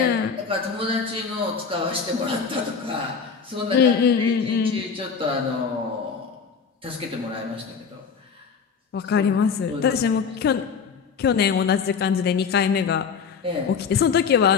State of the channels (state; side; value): quieter; right; 6.0 dB